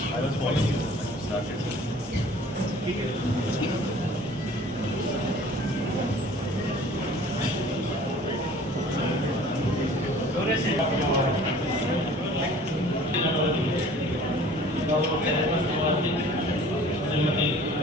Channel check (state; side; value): normal; both; correlation 0.49